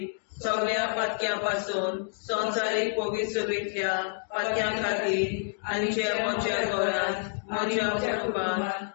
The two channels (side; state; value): right; silent; digital silence